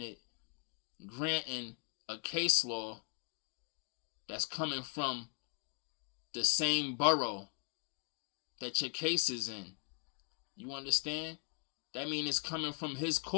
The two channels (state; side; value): quieter; right; 35.5 dB